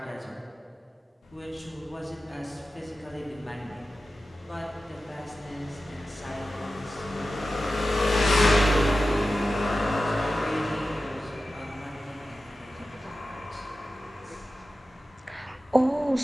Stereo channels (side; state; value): both; normal; correlation 0.94